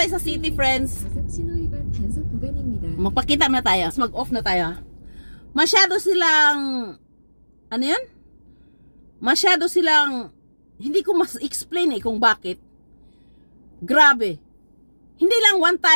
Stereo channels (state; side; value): inverted; both; correlation -1.00